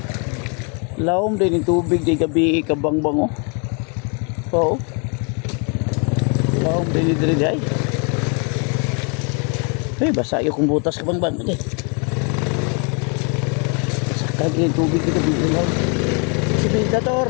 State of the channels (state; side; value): quieter; right; 36.7 dB